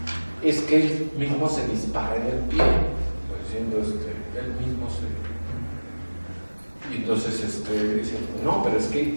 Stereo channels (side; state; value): both; inverted; correlation -1.00